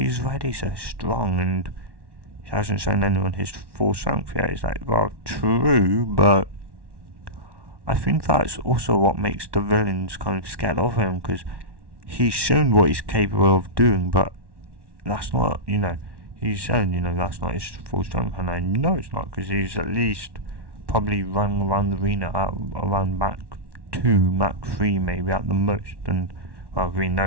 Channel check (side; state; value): left; late; 1.1 ms